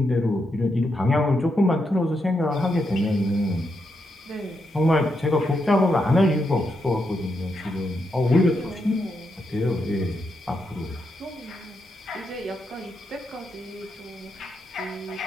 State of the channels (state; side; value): normal; both; correlation 0.82